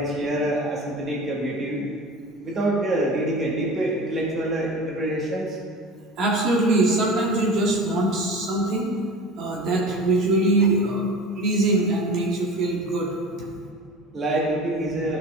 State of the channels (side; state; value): both; normal; correlation 0.35